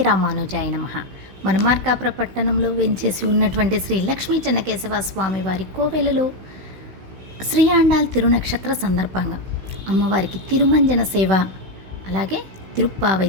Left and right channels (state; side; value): late; left; 16 ms